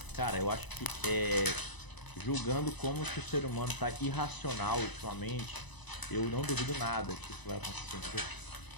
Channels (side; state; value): right; late; 1.0 ms